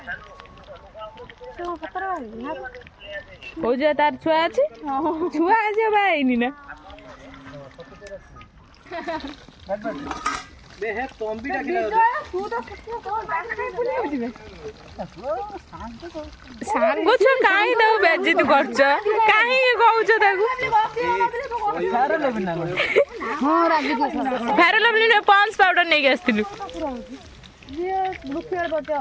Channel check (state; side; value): identical; both; correlation 1.00